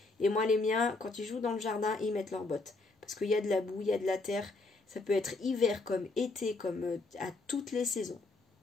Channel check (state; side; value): quieter; right; 3.4 dB